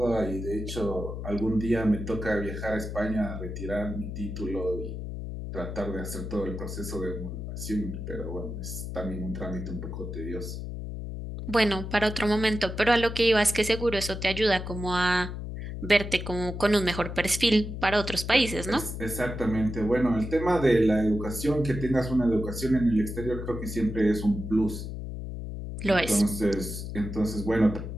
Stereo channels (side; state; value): left; noise; hum, 7 dB below the sound